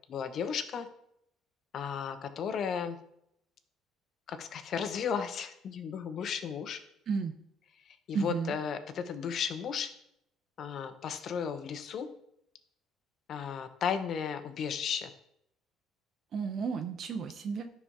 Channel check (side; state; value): right; quieter; 3.4 dB